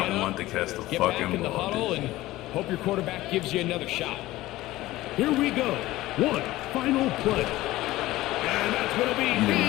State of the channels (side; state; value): right; quieter; 17.1 dB